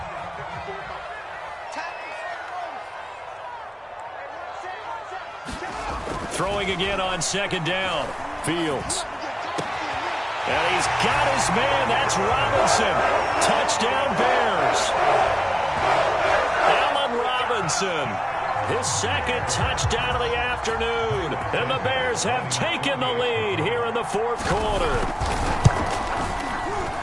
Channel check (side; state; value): both; identical; correlation 1.00